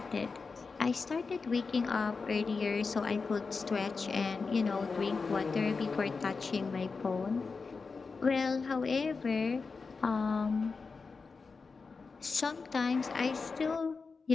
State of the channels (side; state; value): right; quieter; 4.6 dB